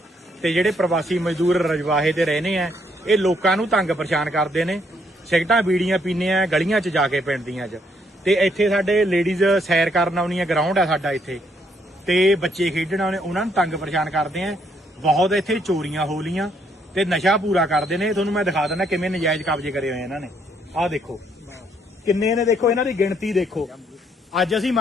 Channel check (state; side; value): normal; both; correlation 0.71